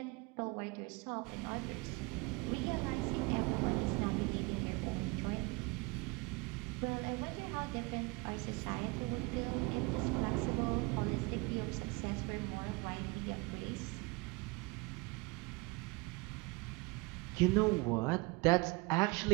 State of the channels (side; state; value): left; quieter; 26.6 dB